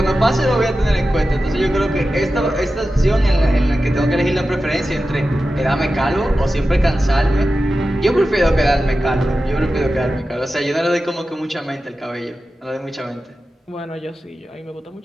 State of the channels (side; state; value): both; normal; correlation 0.93